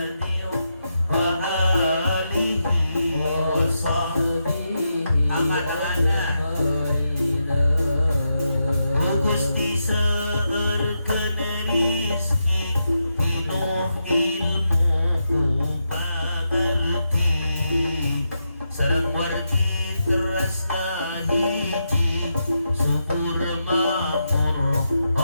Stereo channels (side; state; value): both; inverted; correlation -0.85